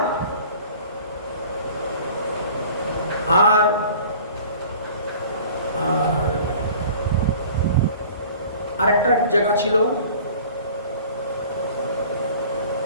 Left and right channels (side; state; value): both; inverted; correlation -0.46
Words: আর আরেকটা জায়গা ছিল